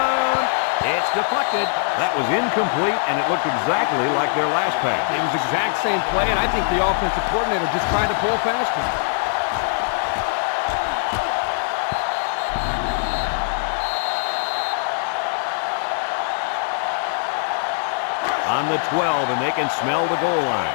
It's deflected. That was incomplete, and it looked exactly like their last pass. It was the exact same play, and I think the offensive coordinator just tried to pull past him. On the 12, and they can smell the goal line.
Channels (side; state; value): right; silent; 60 dB below the other